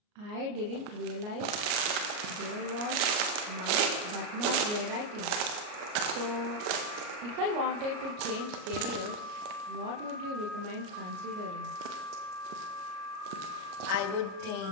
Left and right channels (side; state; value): left; late; 34 ms